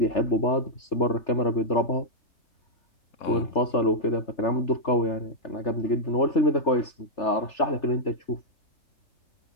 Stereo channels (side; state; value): right; late; 3.4 ms